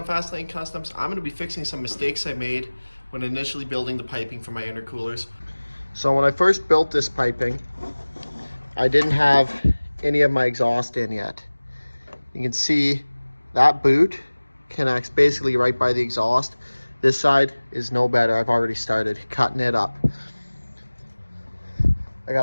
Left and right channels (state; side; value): inverted; both; correlation -1.00